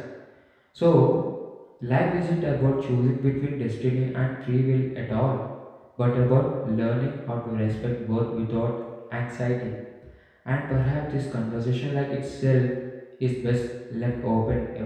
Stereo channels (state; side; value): identical; both; correlation 1.00